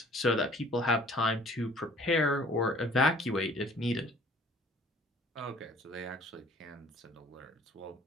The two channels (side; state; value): both; normal; correlation 0.53